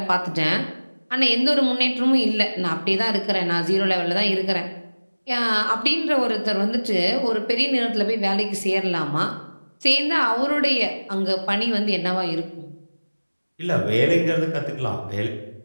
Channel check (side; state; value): both; inverted; correlation -1.00